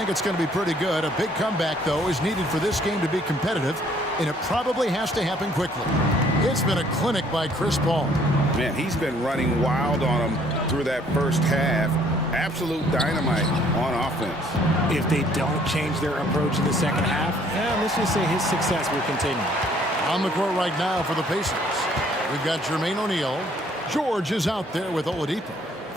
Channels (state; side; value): normal; both; correlation 0.61